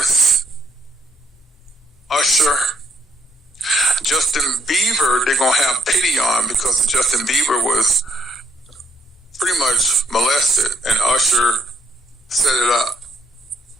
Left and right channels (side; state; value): both; normal; correlation 0.70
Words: Usher, Justin Bieber, they're going to have pity on because Justin Bieber was pretty much molested and Usher set it up.